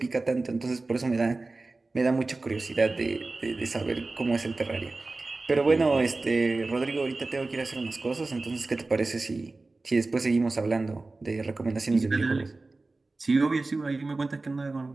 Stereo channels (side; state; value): left; quieter; 3.4 dB